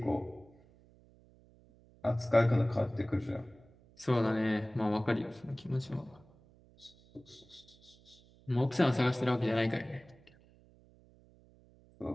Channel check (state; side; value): noise; right; hum, 27 dB below the sound